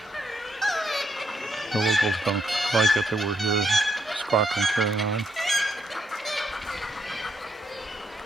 The locals don't like it that we're here squawking, carrying on.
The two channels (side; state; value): both; normal; correlation 0.77